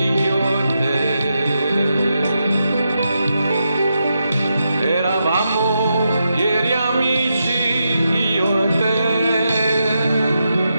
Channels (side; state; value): both; inverted; correlation -0.85